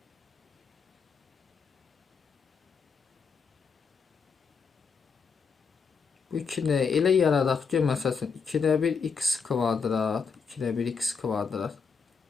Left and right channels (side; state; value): right; quieter; 5.6 dB